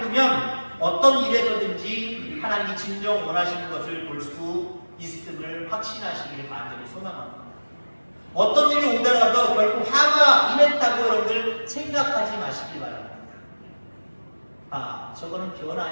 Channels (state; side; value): inverted; both; correlation -1.00